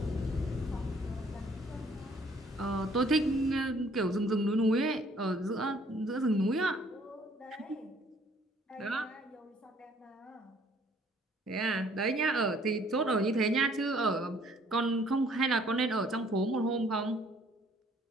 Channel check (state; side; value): normal; both; correlation 0.60